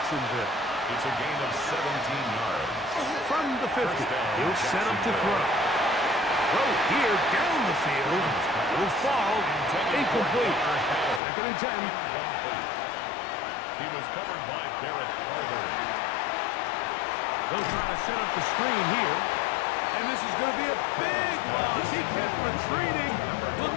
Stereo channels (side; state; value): right; drops out; at 11.2 s